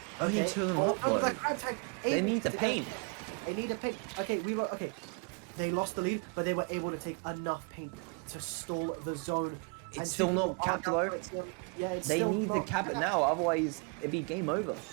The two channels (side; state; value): left; quieter; 35.2 dB